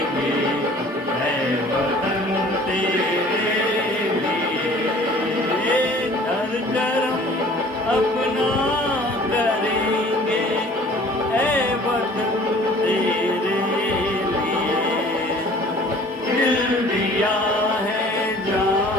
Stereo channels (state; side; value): normal; both; correlation 0.50